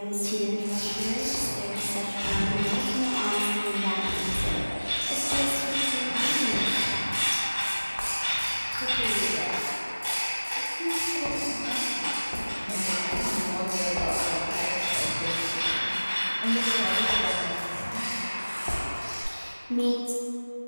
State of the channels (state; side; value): inverted; both; correlation -1.00